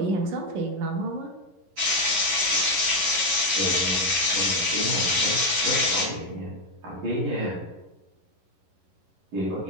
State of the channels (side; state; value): left; late; 11 ms